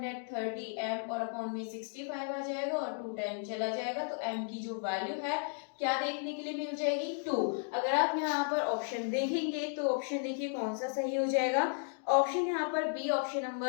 और अपॉन में 65 आ जाएगा और 2 टाइम चला जाएगा। तो m की जो वैल्यू है क्या देखने के लिए मिल जाएगी, 2। अगर आप यहाँ पर ऑप्शन देखेंगे तो ऑप्शन देखिए कौन सा सही हो जाएगा। ऑप्शन यहाँ पर बी, ऑप्शन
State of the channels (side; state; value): right; silent; 55 dB below the other